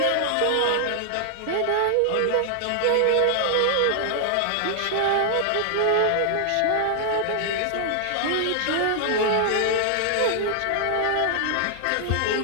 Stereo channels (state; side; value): different; both; correlation 0.00